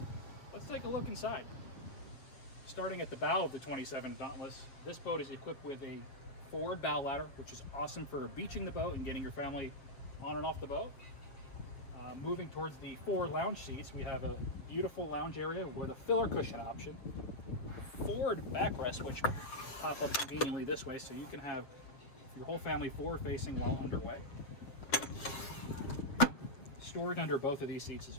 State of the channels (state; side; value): late; right; 7.4 ms